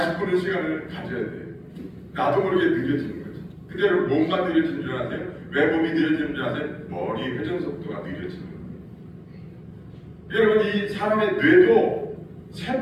시간을 가져야 돼. 나도 모르게 느려지는 거지. 그대로 몸만 느려지는 줄 아세요? 왜 몸이 느려지는 줄 아세요? 머리 회전 속도가 느려지는 거예요. 여러분, 이 사람의 뇌도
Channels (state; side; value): identical; both; correlation 1.00